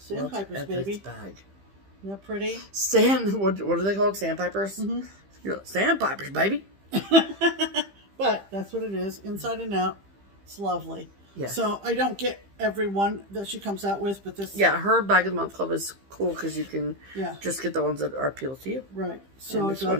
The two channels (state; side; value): late; left; 15 ms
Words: baby. Bag. Isn't that pretty? What are they called? Sandpipers? Mm-hmm. Sandpipers, baby. But that's what it is, inside and out. It's lovely. Yes. So I don't get every one that she comes out with, but this... Yeah, her Bag of the Month Club is cool because you can just get the ones that are appeal to you. Right. So I